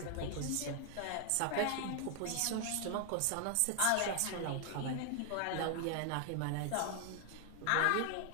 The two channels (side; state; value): both; different; correlation 0.00